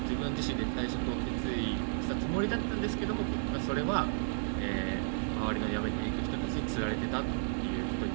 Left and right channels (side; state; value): left; silent; digital silence